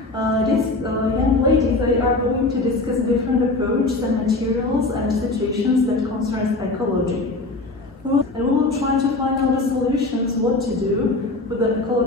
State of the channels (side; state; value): right; quieter; 3.1 dB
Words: These young ladies, they are going to discuss different approaches and materials and situations that concerns ecology. And we will try to find out the solutions, what to do with the